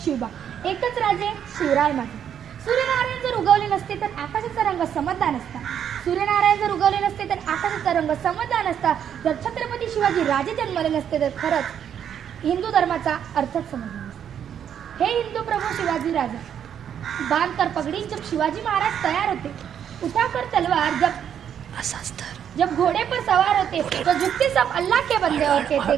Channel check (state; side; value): quieter; left; 8.9 dB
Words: शिवबा, एकच राजे शिवराय माझे. सूर्यनारायण जर उगवले नसते तर आकाशाचा रंग समजला नसता. सूर्यनारायण जर उगवले नसते तर आकाशाचा रंग समजला नसता. जर छत्रपती शिवाजी राजे जन्मले नसते तर खरंच हिंदू धर्माचा अर्थच समजला नसता. हे हिंदू प्रभू शिवाजी राजा, बांध कर पगड़ी जब शिवाजी महाराज तैयार होते, उठाकर तलवार जब घोड़े पर सवार होते तो झुकते सब अल्लाह के बंदे और कहते